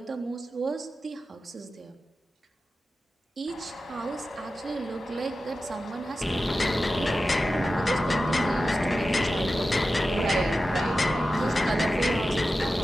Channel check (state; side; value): normal; both; correlation 0.93